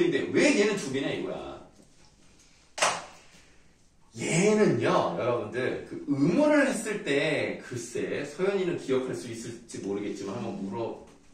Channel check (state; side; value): identical; both; correlation 1.00